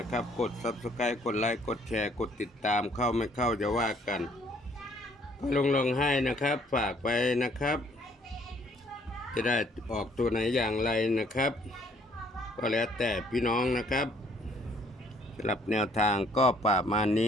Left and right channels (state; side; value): normal; both; correlation 0.63